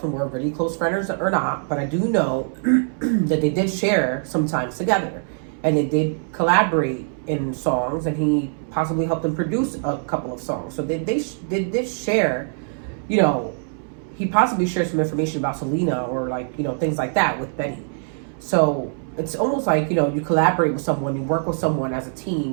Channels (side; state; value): left; silent; 64 dB below the other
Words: were really close friends or not. But I do know that they did share sometimes together. And they did collaborate in songs. And he possibly helped them produce a couple of songs. So they did share, you know, he possibly shared some information about Selena or like, you know, things like that with Benny. So it's almost like, you know, you collaborate with someone, you work with someone as a